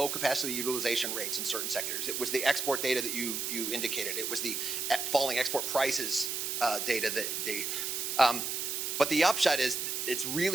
capacity utilization rates in certain sectors. It was the export data that you indicated. It was the falling export prices data that they. But the upshot is it's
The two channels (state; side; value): noise; right; hiss, 2 dB below the sound